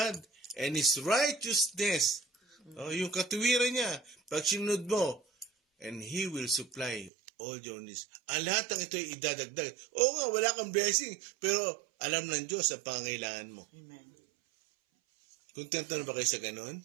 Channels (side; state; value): left; drops out; at 7.1 s